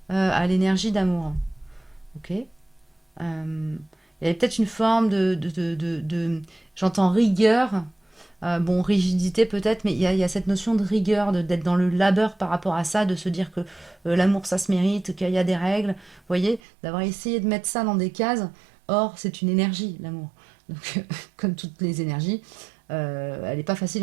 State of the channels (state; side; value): drops out; left; at 16.6 s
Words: à l'énergie d'amour. Ok. Il y avait peut-être une forme j'entends rigueur, bon, rigidité peut-être, mais il y a cette notion de rigueur, d'être dans le labeur par rapport à ça, de se dire que l'amour ça se mérite, qu'il y a des règles, vous voyez, d'avoir essayé de mettre ça dans des cases. Or, c'est une énergie, l'amour. Donc, comme toutes les énergies, elle n'est pas facile